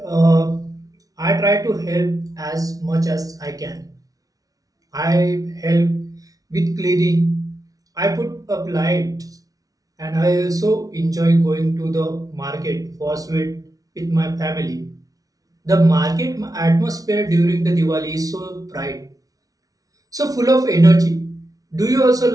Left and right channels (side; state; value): left; late; 0.18 ms